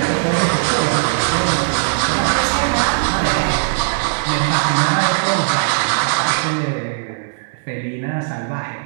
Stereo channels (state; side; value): silent; left; digital silence